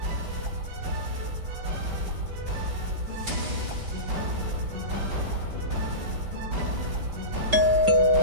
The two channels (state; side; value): late; left; 5.2 ms